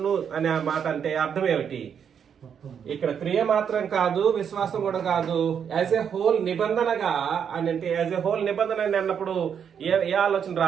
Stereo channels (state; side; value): quieter; left; 7.7 dB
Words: అనే మాట అంటే అర్థం ఏమిటి? ఇక్కడ క్రియ మాత్రం కాదు, విశ్వాసం కూడా కాదు, యాజ్ ఎ హోల్ నిబంధనగా అని అంటే యాజ్ ఎ హోల్ నిబంధన అన్నప్పుడు ఏ ఆలోచన